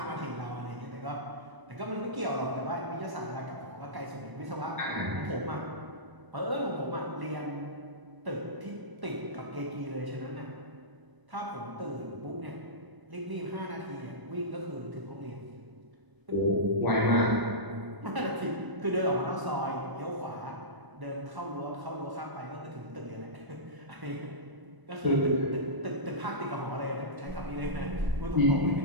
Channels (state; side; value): late; left; 1.0 ms